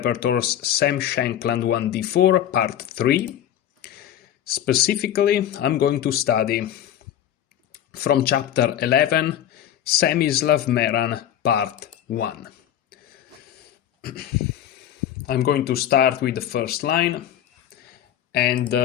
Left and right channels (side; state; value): right; quieter; 10.8 dB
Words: Sam Shankland 1d4 Part 3. Specifically, I'm going to study from Chapter 11, Semislav Meran Part 1. I'm going to start with the first line and